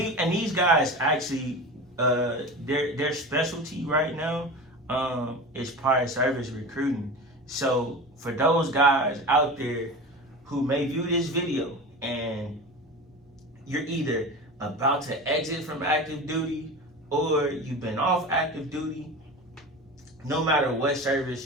guys actually, their specialty right now is prior service recruiting. So for those guys out there who may view this video and you're either about to exit from active duty or you've been off active duty, no matter what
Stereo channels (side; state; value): both; normal; correlation 0.30